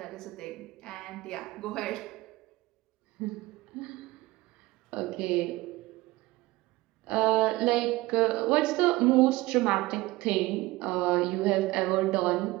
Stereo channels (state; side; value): quieter; left; 19.8 dB